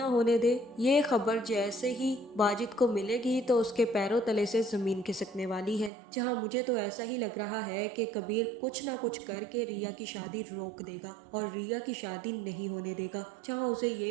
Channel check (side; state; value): left; drops out; at 5.9 s